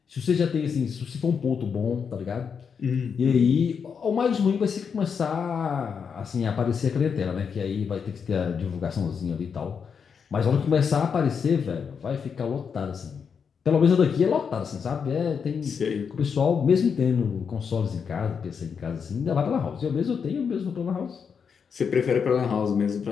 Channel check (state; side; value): quieter; right; 6.5 dB